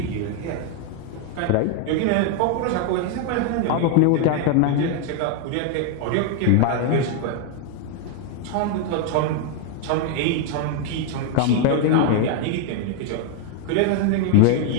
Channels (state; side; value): different; both; correlation 0.00